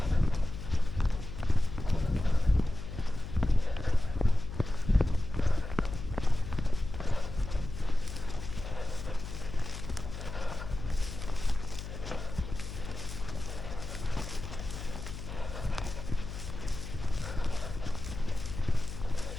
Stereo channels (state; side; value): noise; left; hum, 9 dB below the sound